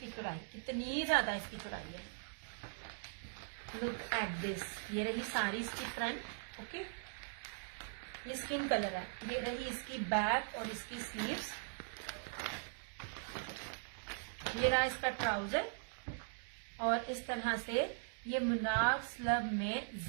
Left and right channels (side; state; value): left; silent; digital silence